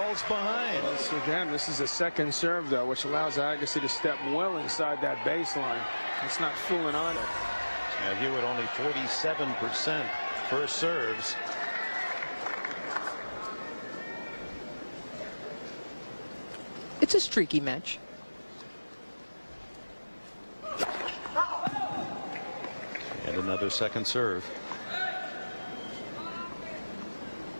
behind. So again, this is a second serve, though, which allows Agassi to step well inside that baseline. It's not fooling on it. Now Hewitt only 47% first serves. It's a streaky match. And another second serve.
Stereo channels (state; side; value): inverted; both; correlation -1.00